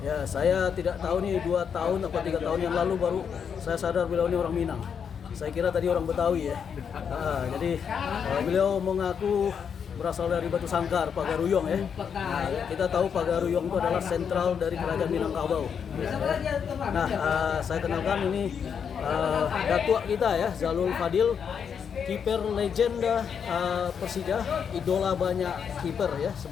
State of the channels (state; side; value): quieter; right; 7.2 dB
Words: saya tidak tahu nih 2 tahun atau 3 tahun yang lalu baru saya sadar beliau ini orang Minang. Saya kira tadi orang Betawi ya. Jadi beliau mengaku berasal dari Batu Sangkar, Pagaruyung ya. Kita tahu Pagaruyung itu adalah sentral dari kerajaan Minangkabau. Nah, saya kenalkan ini datuk kita ya, Zalul Fadil, kiper legenda Persija, idola banyak kiper ya